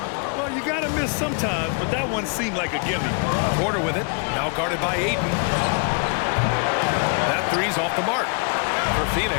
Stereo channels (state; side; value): quieter; right; 39.5 dB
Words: Well, you got to miss sometimes, but that one seemed like a gimme. Porter with it. Now guarded by Ayton. That three's off the mark. For